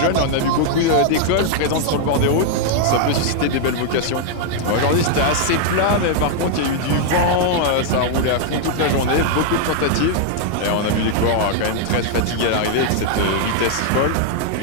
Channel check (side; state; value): both; different; correlation 0.00